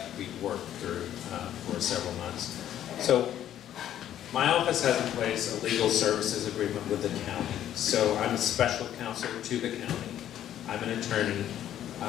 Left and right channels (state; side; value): quieter; right; 11.3 dB